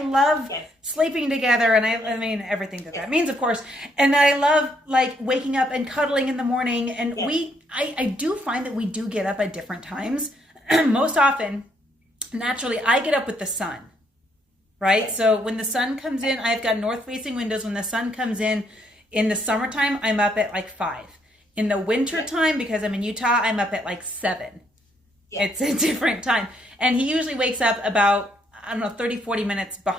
love Yes. sleeping together and I mean, everything that means, of course. And then I love like waking up and cuddling in the morning. And Yes. I do find that we do get up at different times. Most often, naturally, I get up with the sun, right? Yes. So when the sun comes in, I've got north facing windows. When the sun comes in the summertime, I'm up at like 5. In the winter time, because I'm in Utah, I'm up at like 7. Yes. It's a different time. And he usually wakes up about, I don't know, 30, 40 minutes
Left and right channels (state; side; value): normal; both; correlation 0.72